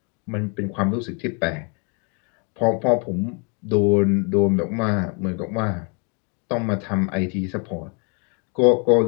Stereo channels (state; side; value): quieter; right; 36.4 dB